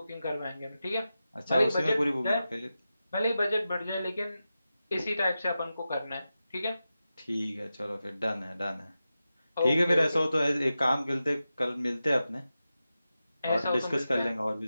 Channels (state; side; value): inverted; both; correlation -0.92